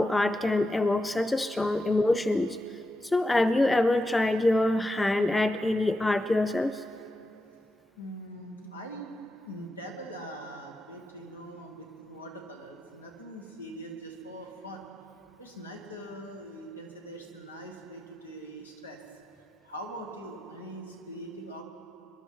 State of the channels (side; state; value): both; normal; correlation 0.88